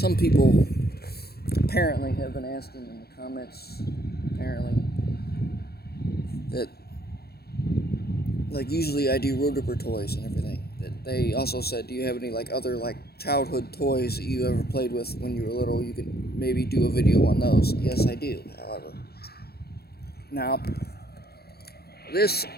people apparently have been asking in the comments, apparently, that like usually I do road ripper toys and everything. They also said, do you have any like other like childhood toys that you ever played with when you were little? You could maybe do a video on those. Yes, I do, however. Now, the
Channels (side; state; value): right; late; 0.46 ms